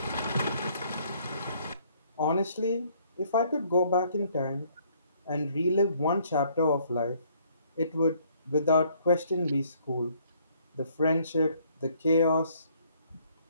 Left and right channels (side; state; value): both; inverted; correlation -0.64